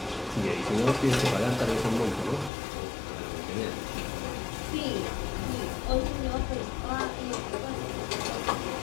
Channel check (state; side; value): drops out; right; at 2.5 s